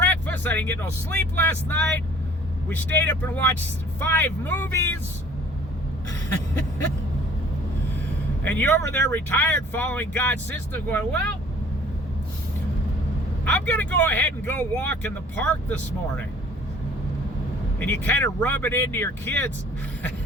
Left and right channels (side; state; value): both; normal; correlation 0.51